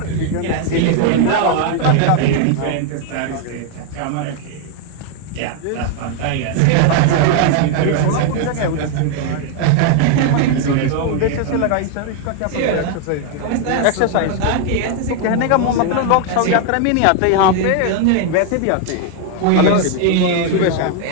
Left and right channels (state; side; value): different; both; correlation 0.00